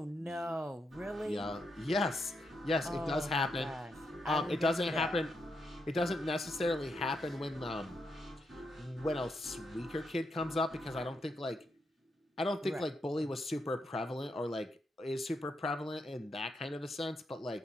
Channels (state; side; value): normal; both; correlation 0.82